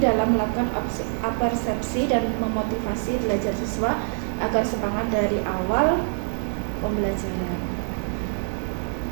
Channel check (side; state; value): left; silent; digital silence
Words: melakukan apersepsi dan memotivasi belajar siswa agar semangat dari awal pembelajaran.